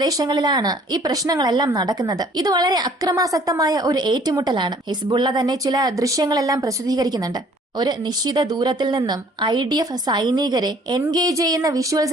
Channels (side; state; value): both; normal; correlation 0.56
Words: ഈ പ്രശ്നങ്ങളെല്ലാം നടക്കുന്നത്. ഇത് വളരെ അക്രമാസക്തമായ ഒരു ഏറ്റുമുട്ടലാണ്. ഹിസ്ബുള്ള തന്നെ ചില ദൃശ്യങ്ങളെല്ലാം പ്രസിദ്ധീകരിക്കുന്നുണ്ട്. ഒരു നിശ്ചിത ദൂരത്തിൽ നിന്നും IDF സൈനികരെ എൻഗേജ് ചെയ്യുന്ന